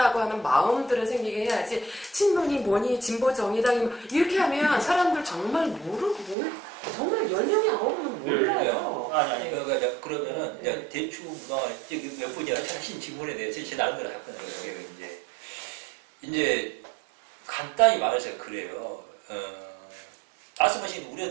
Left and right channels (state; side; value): drops out; left; at 6.4 s